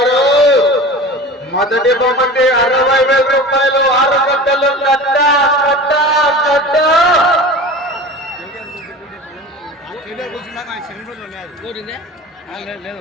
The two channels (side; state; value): both; normal; correlation 0.35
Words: మొదటి బొమ్మటి 60,000 రూపాయలు 6 గంటలు కట్ట.